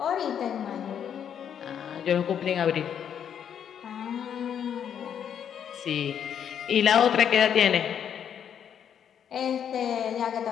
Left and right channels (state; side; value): quieter; right; 8.6 dB